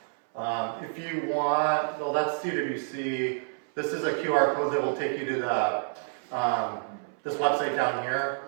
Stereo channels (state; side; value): silent; left; 59 dB below the other